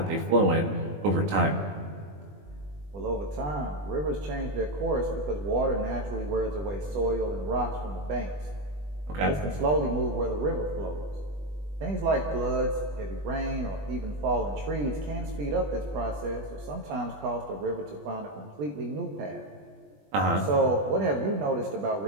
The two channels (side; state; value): left; late; 20 ms